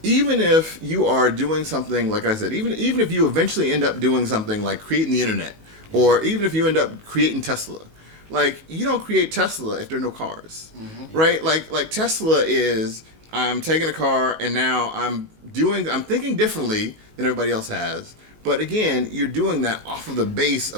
Even if you are doing something, like I said, even if you eventually end up doing something like creating the internet, or even if you end up creating Tesla, like you don't create Tesla if there are no cars, right? Like Tesla is, I'm taking a car and now I'm thinking differently than everybody else has. But again, you're doing that off of the base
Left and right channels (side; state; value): left; late; 19 ms